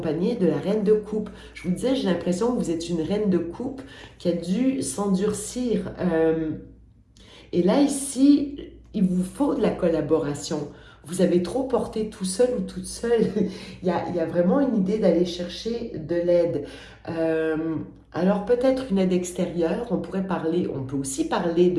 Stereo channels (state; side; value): identical; both; correlation 1.00